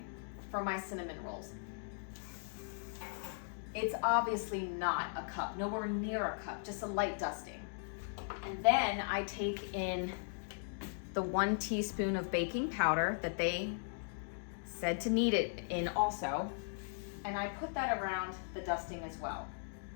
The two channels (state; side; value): silent; right; digital silence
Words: for my cinnamon rolls. It's obviously not a cup, nowhere near a cup, just a light dusting. And then I take in the 1 teaspoon of baking powder that they said to knead it in also, and I put that around the dusting as well.